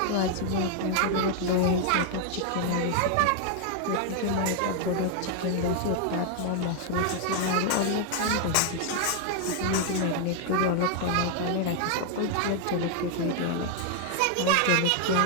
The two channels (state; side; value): different; both; correlation 0.00